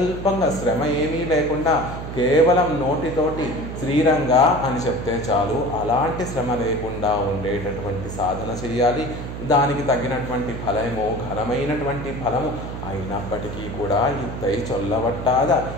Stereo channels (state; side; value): noise; right; hum, 8 dB below the sound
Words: శ్రమ ఏమీ లేకుండా కేవలం నోటితోటి శ్రీరంగ అని చెప్తే చాలు. అలాంటి శ్రమ లేకుండా ఉండేటటువంటి సాధన చేయాలి. దానికి తగినటువంటి ఫలము ఘనమైనటువంటి ఫలము అయినప్పటికీ కూడా ఇత్తై చొల్లవట్టాద